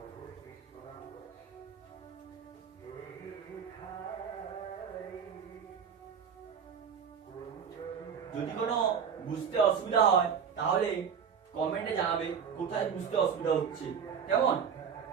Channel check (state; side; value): quieter; left; 7.2 dB